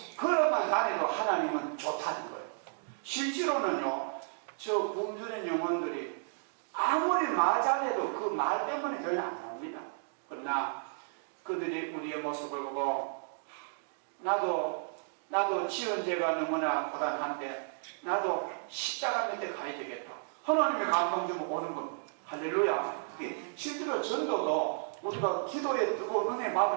걸어만 다녀도 하나님은 좋다는 거예요. 실제로는요, 저 굶주린 영혼들이 아무리 말 잘해도 그 말 때문에 교회는 안 나옵니다. 그러나 그들이 우리의 모습을 보고 나도 지은 죄가 너무나 고단한데 나도 십자가 밑에 가야 되겠다, 하나님의 감동 주면 오는 겁니다. 할렐루야. 실제로 전도도 우리가 기도에 뜨거운 은혜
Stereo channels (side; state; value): left; silent; digital silence